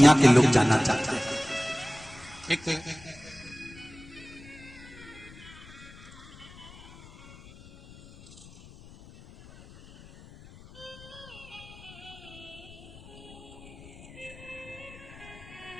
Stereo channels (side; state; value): left; noise; rumble, 19 dB below the sound